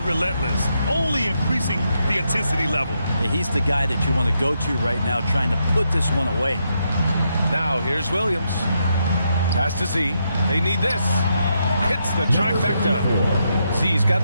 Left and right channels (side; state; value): both; inverted; correlation -0.80